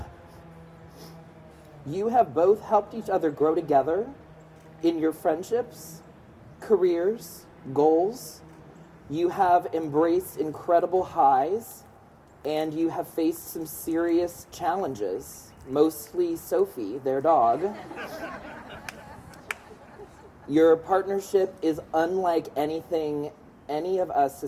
You have both helped each other grow together in your friendships, careers, goals. You have embraced incredible highs, and you have faced some serious challenges, mostly Sophie, their dog. Your partnership is unlike anything any of us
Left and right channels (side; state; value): both; identical; correlation 1.00